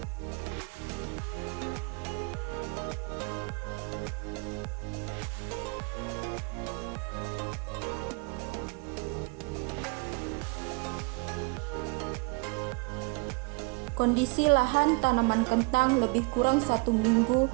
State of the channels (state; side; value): quieter; left; 30.2 dB